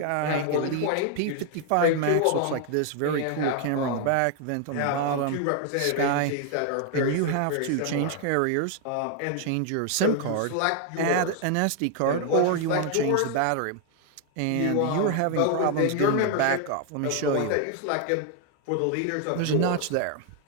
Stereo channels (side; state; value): both; different; correlation 0.00